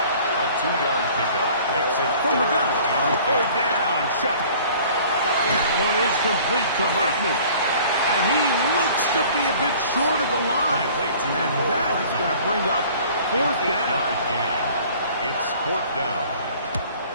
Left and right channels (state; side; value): inverted; both; correlation -0.50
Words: A 2-yard pickup makes it from the gun. 3rd down, Shuck. That one is complete to Hartman. And he looks to be a bit short of the line. And that is going to bring up 4th down. It's 4th down.